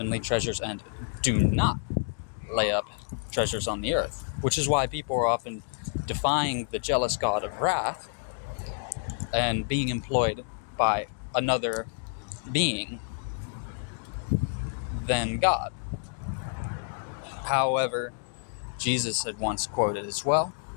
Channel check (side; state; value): right; silent; digital silence